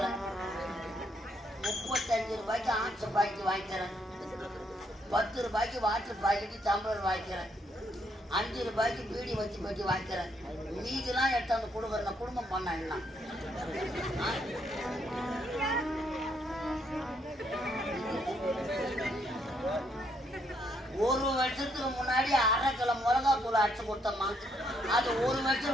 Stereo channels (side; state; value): both; normal; correlation 0.73